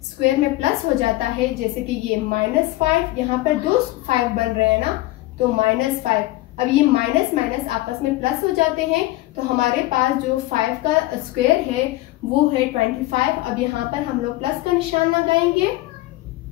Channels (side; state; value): right; quieter; 18.1 dB